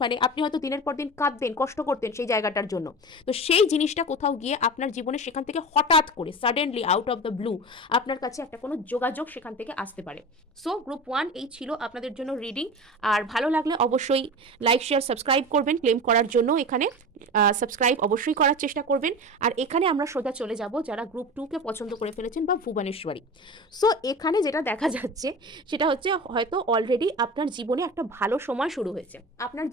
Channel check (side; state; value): both; normal; correlation 0.30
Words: মানে আপনি হয়তো দিনের পর দিন কাঁদতেন, কষ্ট করতেন সেই জায়গাটার জন্য, তো সেই জিনিসটা কোথাও গিয়ে আপনার জীবনে সেখান থেকে হঠাৎ করে suddenly out of the blue আপনার কাছে একটা কোনো যোগাযোগ সেখান থেকে আসতে পারে। সো গ্রুপ 1 এই ছিল আপনাদের জন্য রিডিং। আর ভালো লাগলে অবশ্যই লাইক শেয়ার সাবস্ক্রাইব করবেন, ক্লেম করার জন্য এখানে সাবস্ক্রাইব অবশ্যই করার চেষ্টা করবেন। আর এখানে আমরা সোজা চলে যাব যারা গ্রুপ 2কে পছন্দ করে ফেলেছেন বা ভুবনেশ্বরী। সো এখানে যেটা দেখা যাচ্ছে সেটা হচ্ছে হয়তো অলরেডি আপনার জীবনে একটা ভালো সময় শুরু হয়েছে, আপনার